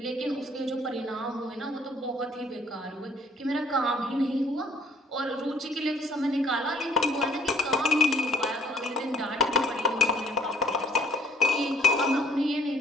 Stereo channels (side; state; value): both; normal; correlation 0.62